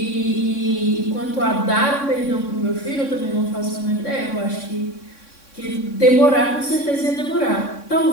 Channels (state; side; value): late; right; 3.6 ms